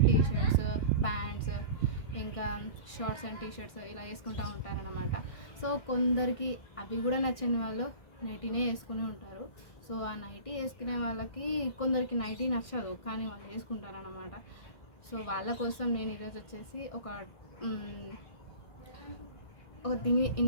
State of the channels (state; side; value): late; right; 1.6 ms